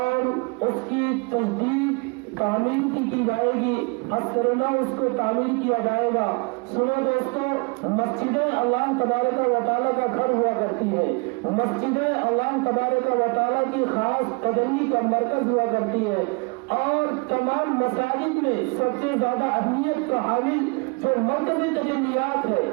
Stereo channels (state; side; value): quieter; left; 30.9 dB